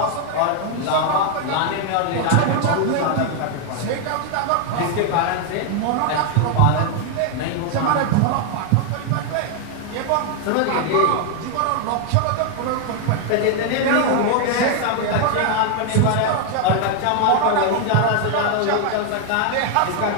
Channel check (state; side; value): different; both; correlation 0.00